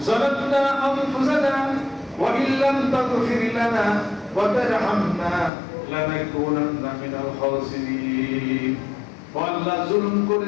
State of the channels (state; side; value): drops out; right; at 5.5 s